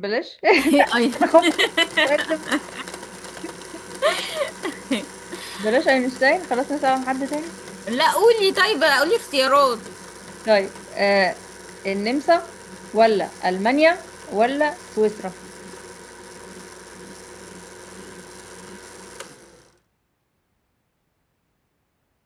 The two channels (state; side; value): identical; both; correlation 1.00